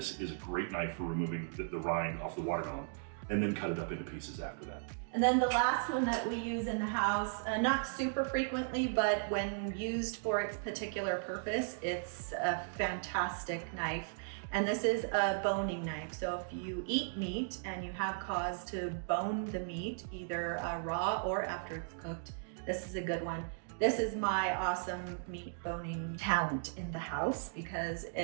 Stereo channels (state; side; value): silent; left; digital silence